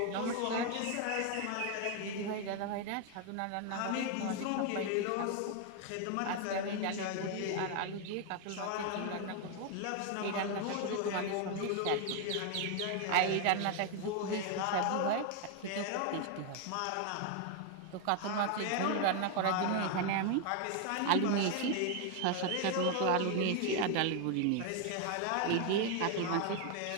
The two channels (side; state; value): both; different; correlation 0.01